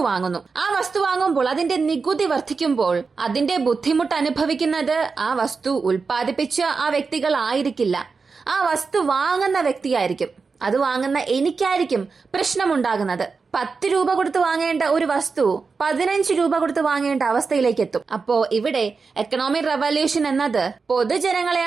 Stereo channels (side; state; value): left; quieter; 4.7 dB